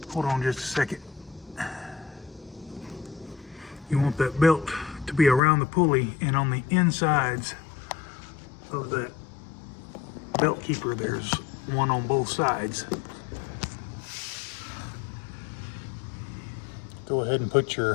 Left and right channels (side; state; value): right; drops out; at 5.4 s